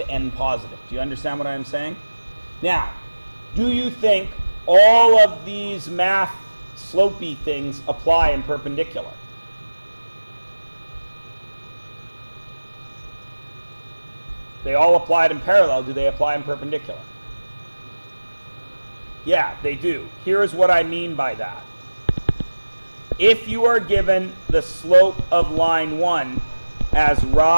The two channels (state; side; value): inverted; both; correlation -1.00